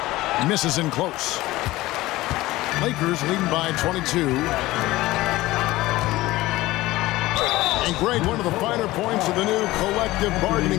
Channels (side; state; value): right; quieter; 18.1 dB